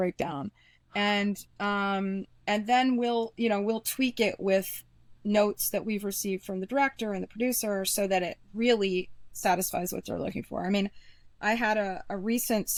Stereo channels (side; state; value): both; identical; correlation 1.00